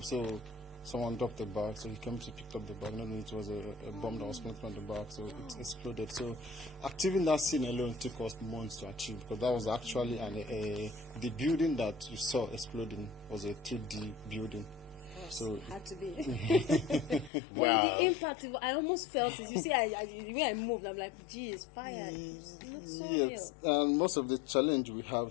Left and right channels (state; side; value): drops out; right; at 17.3 s